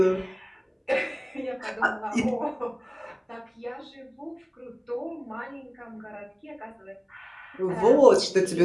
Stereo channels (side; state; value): both; identical; correlation 1.00